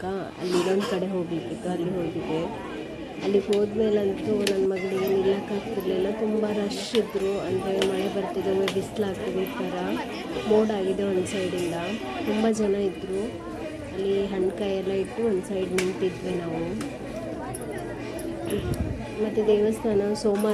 ಅಲ್ಲಿ ಇನ್ನೊಂದು ಕಡೆ ಹೋಗ್ಲಿಕ್ಕಿತ್ತು, ಅಲ್ಲಿ ಹೋಗಿದ್ದೆ. ಅಲ್ಲಿಗೆ ಹೋದ್ಮೇಲಂತೂ ನನ್ನ ಮಗಳಿಗೆ ನಿಲ್ಲಕ್ಕಾಗ್ತಿರ್ಲಿಲ್ಲ, ತುಂಬ ರಶ್ ಇದ್ದರು. ಅಂದರೆ ಮಳೆ ಬರ್ತಿದೆ, ಒಮ್ಮೆ ಬಿಸಿಲಾಗ್ತಿದೆ, ಈ ಥರ ಮೋಡ ಆಗಿದೆ ಒಂದು ಸೈಡಿಂದ. ತುಂಬ ಜನ ಇದ್ದರು. ಅಲ್ಲಿ ಹಣ್ಣುಕಾಯಿ ಎಲ್ಲ ಇಟ್ಟು ಒಂದು ಸೈಡ್ ನಿಂತಿದ್ವಿ ನಾವು. ಮತ್ತು ದೇವಸ್ಥಾನ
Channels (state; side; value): identical; both; correlation 1.00